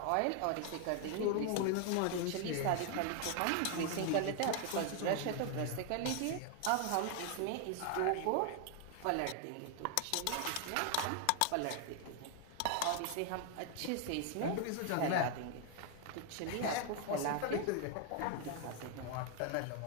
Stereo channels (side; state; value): both; different; correlation 0.00